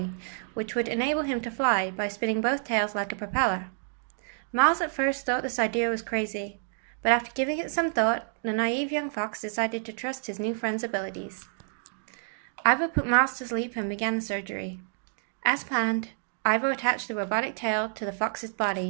which would enable him to fly by spinning both tails like a propeller. Miles at first thought this idea was crazy, but after giving it some thought, the naive young fox decided to trust his new friend's abilities. Ivo put Miles to sleep and began the surgery. As planned, Ivo attached the robotic tail to the fox's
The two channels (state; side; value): silent; left; digital silence